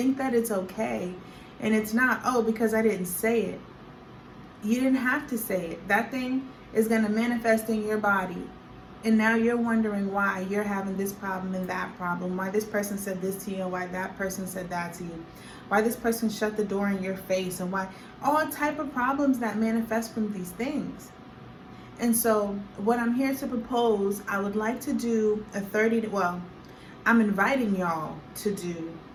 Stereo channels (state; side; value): identical; both; correlation 1.00